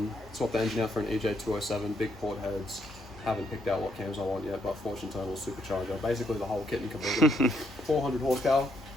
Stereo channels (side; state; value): both; normal; correlation 0.74